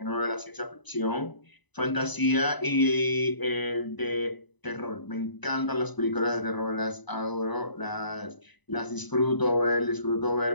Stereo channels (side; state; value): right; late; 1.0 ms